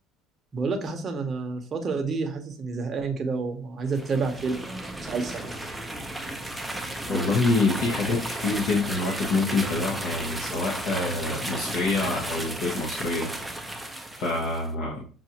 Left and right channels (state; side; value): normal; both; correlation 0.60